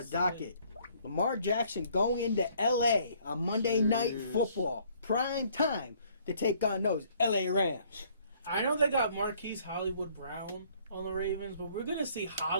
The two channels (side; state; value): both; inverted; correlation -0.61